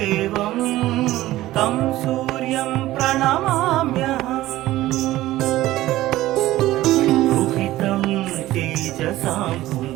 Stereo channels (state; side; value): quieter; left; 16.0 dB